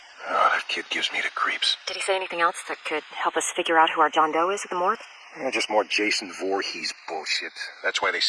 Oh, that kid gives me the creeps. Did he say anything else that could help us figure out who our John Doe is at the morgue? Just more Jason Voorhees bullshit. That's why they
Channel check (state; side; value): identical; both; correlation 1.00